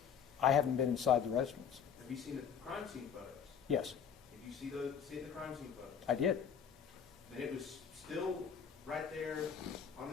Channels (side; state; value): right; quieter; 7.5 dB